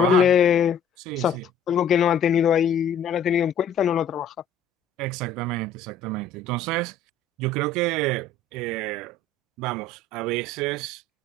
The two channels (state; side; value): quieter; right; 3.6 dB